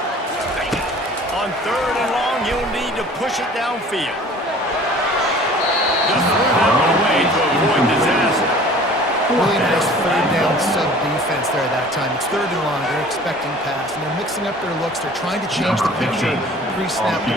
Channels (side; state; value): both; normal; correlation 0.47